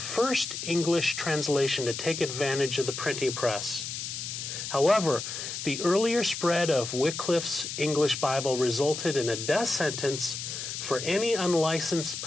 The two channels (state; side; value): noise; left; hiss, 6 dB below the sound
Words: English translation to take advantage of the printing press. However, the earlier spread of Wycliffe's English Bible resulted in a death sentence for any unlicensed